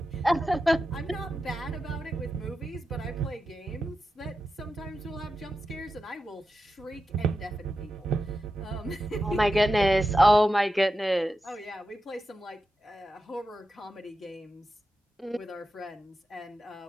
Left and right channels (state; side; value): normal; both; correlation 0.90